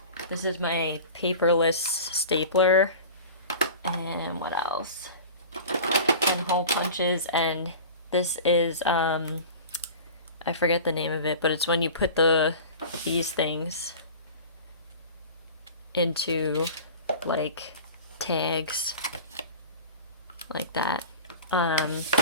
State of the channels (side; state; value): both; inverted; correlation -0.37